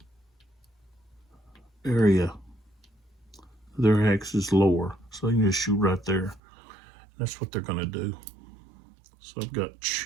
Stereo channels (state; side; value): drops out; left; at 6.4 s